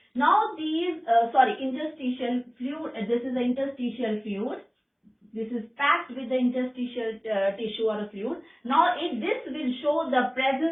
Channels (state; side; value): identical; both; correlation 1.00